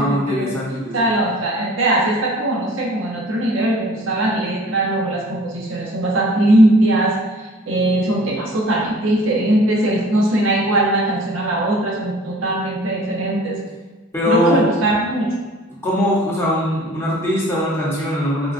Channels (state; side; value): normal; both; correlation 0.49